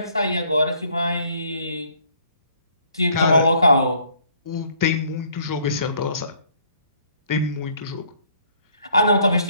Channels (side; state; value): both; inverted; correlation -0.63